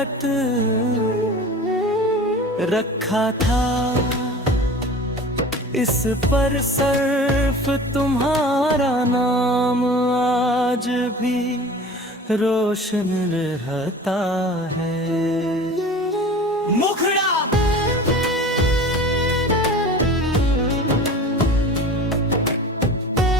रखा था, इस पर सिर्फ तुम्हारा नाम आज भी रोशन रहता है। मुखड़ा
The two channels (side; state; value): both; normal; correlation 0.39